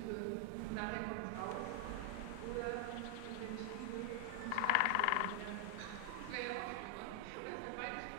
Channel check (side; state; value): both; different; correlation -0.01